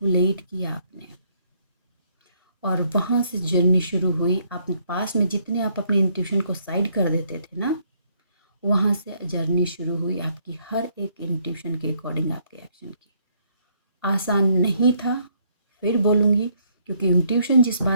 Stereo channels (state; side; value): inverted; both; correlation -0.69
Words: किया आपने, और वहाँ से जर्नी शुरू हुई। आप पास में जितने आप अपने इंट्यूशन को साइड कर देते थे ना, वहाँ से जर्नी शुरू हुई आपकी हर एक इंट्यूशन के अकॉर्डिंग आपके एक्शन की। आसान नहीं था, फिर बोलूँगी, क्योंकि इंट्यूशन जिस